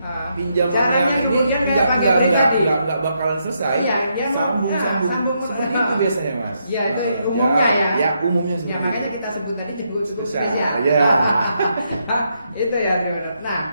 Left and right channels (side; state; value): both; inverted; correlation -0.78